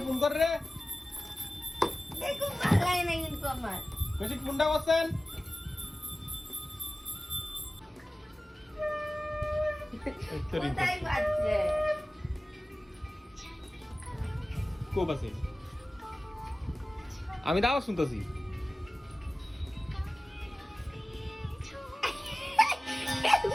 ফোন কর রে। দেখো পালাই না কিন্তু আমার। বেশি ফোনটা করছেন। কোথায় বাচ্চা? কো বাসে? আমি দাও শুনতেছি।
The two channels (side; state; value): both; normal; correlation 0.97